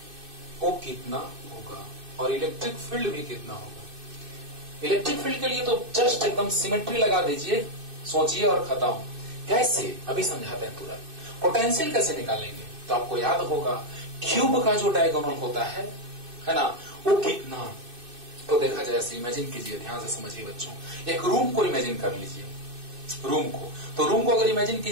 वो कितना होगा और इलेक्ट्रिक फील्ड भी कितना होगा। इलेक्ट्रिक फील्ड के लिए तो जस्ट एकदम सिमेट्री लगा दीजिए, सोचिए और खत्म। कैसे? अभी समझाते हैं तुरंत। पोटेंशियल कैसे निकालेंगे? तो आपको याद होगा क्यूब का जो डायगोनल होता है ना, वो कितना। तो देखा जाए, ऐसे इमेजिन कीजिए, ध्यान से समझिए बच्चों। एक रूम को इमेजिन कर लीजिए, रूम को। तो रूम को अगर इमेजिन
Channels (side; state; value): left; late; 2.6 ms